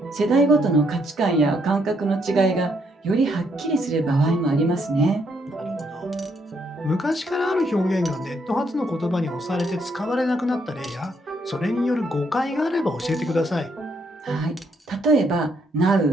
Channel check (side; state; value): both; normal; correlation 0.73